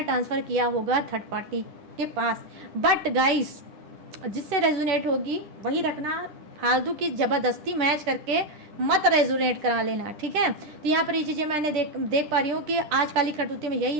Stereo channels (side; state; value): left; late; 10 ms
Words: ट्रांसफ़र किया होगा थर्ड पार्टी के पास। बट गाइस जिससे रेजोनेट होगी वही रखना, फालतू की ज़बरदस्ती मैच करके मत रेजोनेट करा लेना, ठीक है। तो यहाँ पर ये चीज़ें मैंने देख पा रही हूँ कि आज काली करतूती में यही